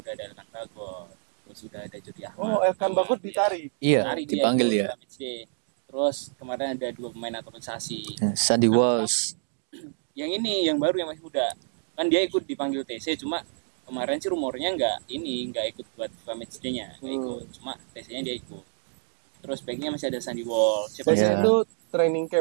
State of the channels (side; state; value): left; silent; digital silence